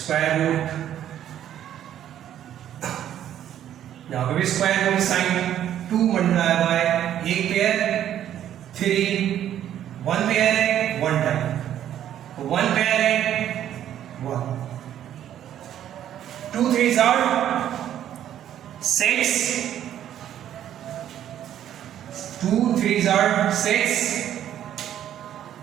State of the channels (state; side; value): quieter; left; 10.9 dB